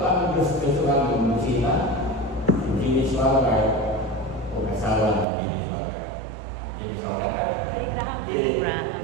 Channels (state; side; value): drops out; left; at 5.2 s